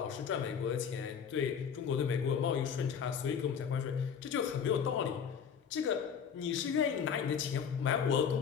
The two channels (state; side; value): quieter; right; 7.2 dB